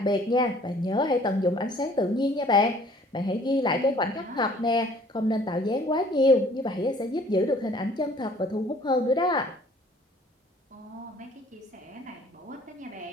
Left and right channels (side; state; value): both; normal; correlation 0.55